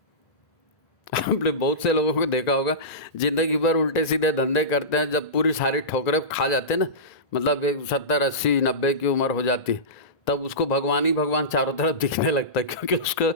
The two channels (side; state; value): right; late; 1.9 ms